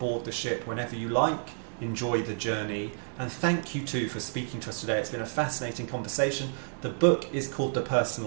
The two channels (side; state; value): left; silent; digital silence